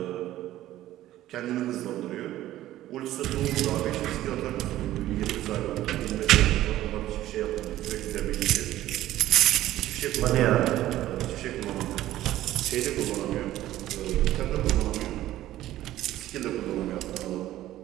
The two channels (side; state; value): left; quieter; 14.3 dB